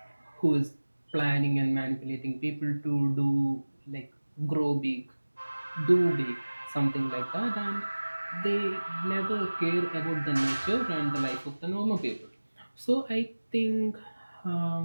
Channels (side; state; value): both; inverted; correlation -1.00